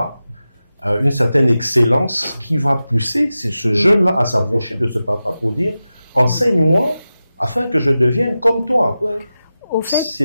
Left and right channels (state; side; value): inverted; both; correlation -0.94